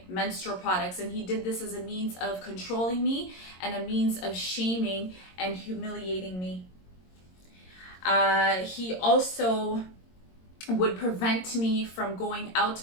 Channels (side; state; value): right; late; 22 ms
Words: menstrual products. And he did this as a means of controlling me and a means of shaming and humiliating me. He also would prevent me from going out to